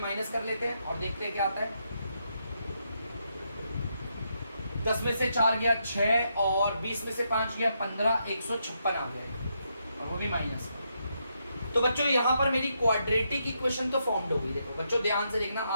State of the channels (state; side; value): inverted; both; correlation -0.80